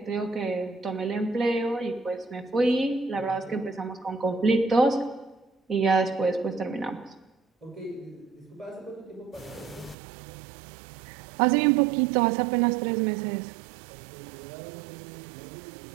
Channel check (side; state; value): left; drops out; at 10.0 s